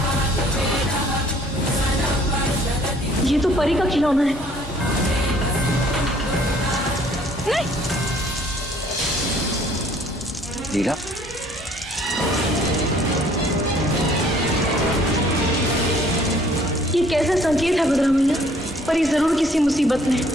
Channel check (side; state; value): both; normal; correlation 0.58